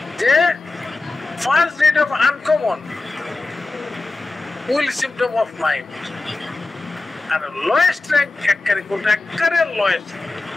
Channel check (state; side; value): quieter; right; 3.3 dB